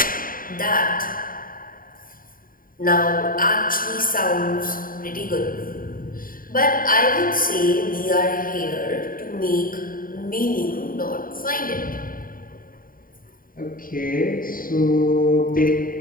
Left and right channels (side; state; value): right; late; 0.41 ms